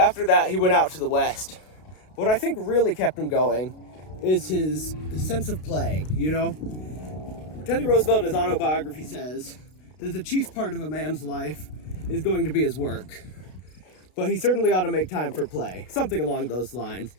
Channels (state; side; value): late; right; 32 ms